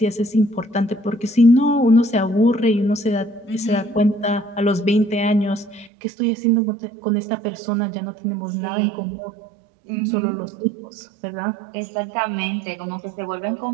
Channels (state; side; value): drops out; left; at 5.9 s